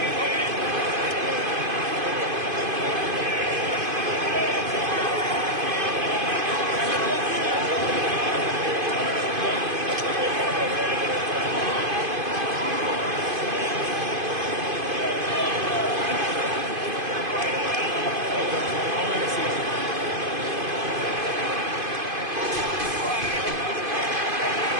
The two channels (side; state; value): left; late; 2.5 ms